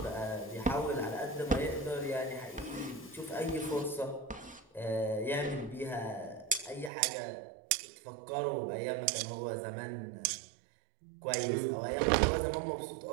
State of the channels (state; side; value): drops out; left; at 6.9 s